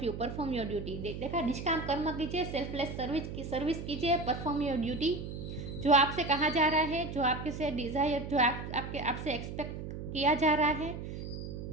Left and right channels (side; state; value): right; noise; hum, 7 dB below the sound